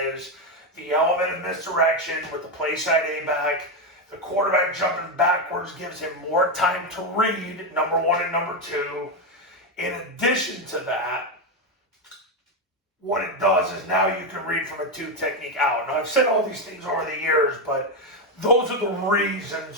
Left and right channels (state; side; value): normal; both; correlation 0.08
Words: the element of misdirection with the play side A-back. The quarterback jumping backwards gives him more time to read, number one and number two. In addition to that, what it does is now you can read from a two technique out. Now, I've said all these things over the years, but those are the reasons